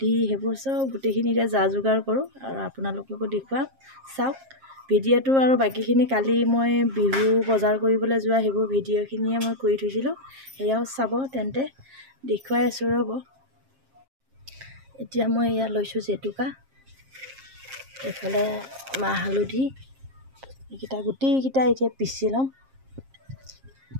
সেইবোৰ চব গোটেইখিনিতে যা যোগাৰ কৰোঁ আৰু আপোনালোককো দেখুৱাম। চাওক ভিডিঅ'টো, আৰু বাকীখিনি কালি মই বিহু বজাৰ কৰিবলৈ যোৱা সেইবোৰ ভিডিঅ'খিনিয়ে মই কৰি থৈছিলোঁ, সেয়াও চাব। তেন্তে দেখুৱাই আছোঁ ৰ'ব। এতিয়া মই এয়া লৈছোঁ জেতুকা, এইফালে মাহ হালধি, এইকেইটা গোটেইকেইটা এতিয়া পিচি ল'ম।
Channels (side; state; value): left; late; 7.5 ms